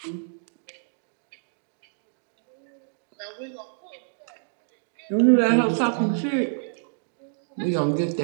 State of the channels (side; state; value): left; silent; digital silence